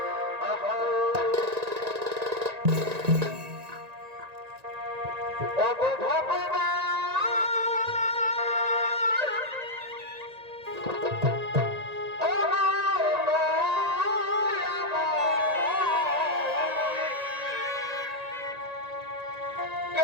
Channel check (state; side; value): late; left; 1.9 ms